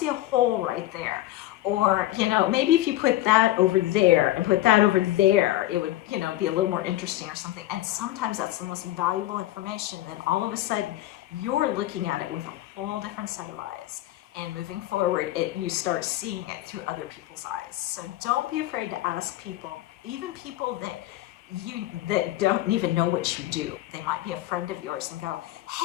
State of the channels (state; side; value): quieter; right; 15.4 dB